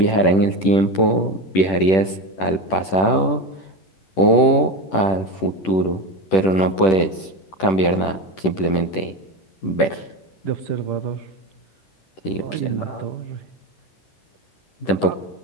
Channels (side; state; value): right; late; 10 ms